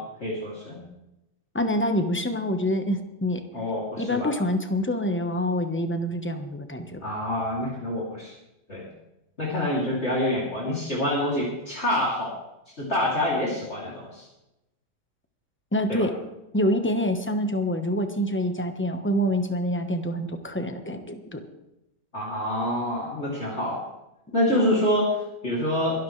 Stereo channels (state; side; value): normal; both; correlation 0.13